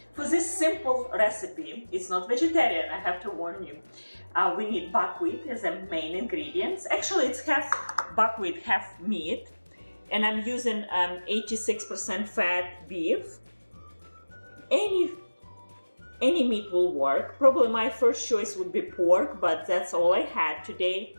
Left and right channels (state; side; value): inverted; both; correlation -1.00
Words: For this simple recipe, it's not vegetarian, I have to warn you. We need buckwheat as a main ingredients. Actually, it's half buckwheat, half meat. And I'm using 86% fat beef. Any meat will work. Probably my first choice would be pork, but that's all I had today.